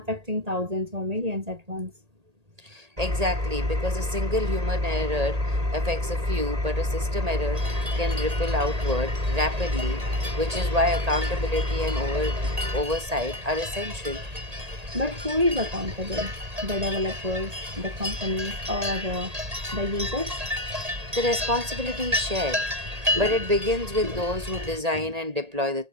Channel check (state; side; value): late; left; 1.8 ms